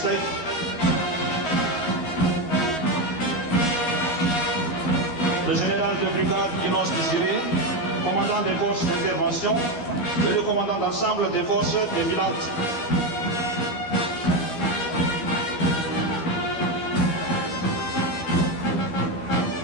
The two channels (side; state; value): right; late; 13 ms